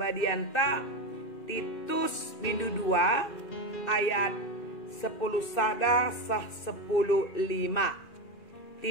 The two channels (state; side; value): late; right; 2.4 ms